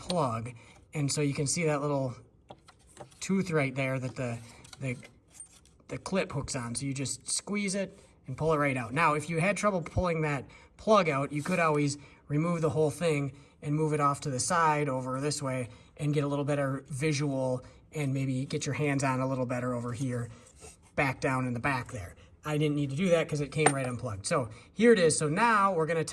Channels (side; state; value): both; identical; correlation 1.00